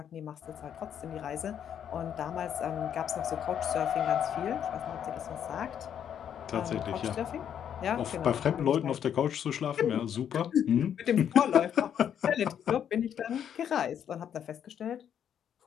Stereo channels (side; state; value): right; quieter; 9.0 dB